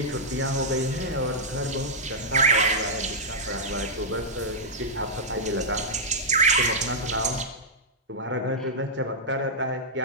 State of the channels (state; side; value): normal; both; correlation -0.08